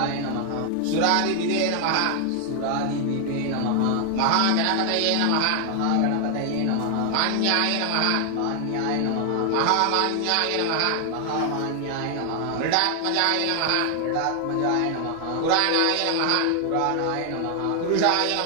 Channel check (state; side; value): different; both; correlation 0.00